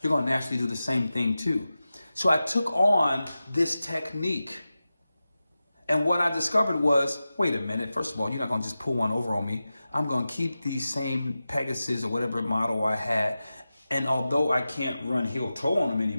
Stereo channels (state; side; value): inverted; both; correlation -0.94